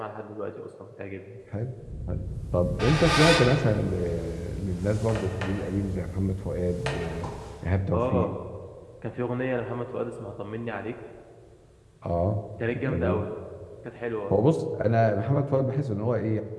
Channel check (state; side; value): identical; both; correlation 1.00